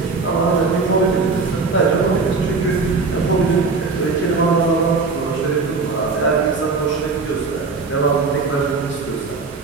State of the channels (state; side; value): quieter; left; 4.2 dB